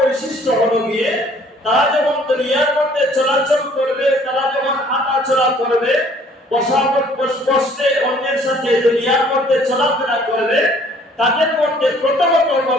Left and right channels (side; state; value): both; normal; correlation 0.57